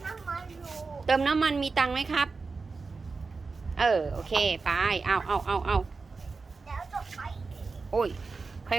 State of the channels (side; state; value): left; quieter; 4.3 dB